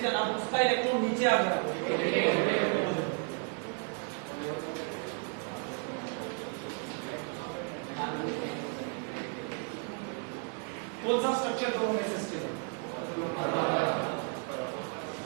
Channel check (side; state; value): left; quieter; 38.8 dB